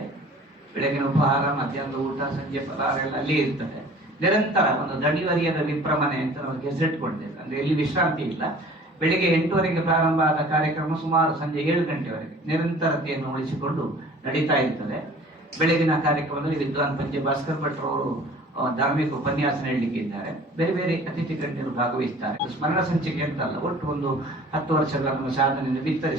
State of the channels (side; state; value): both; normal; correlation 0.47